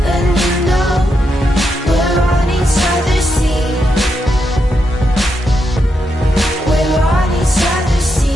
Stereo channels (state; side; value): normal; both; correlation 0.83